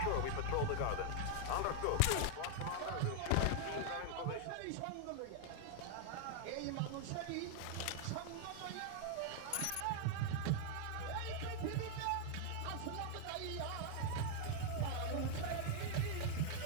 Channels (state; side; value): different; both; correlation 0.00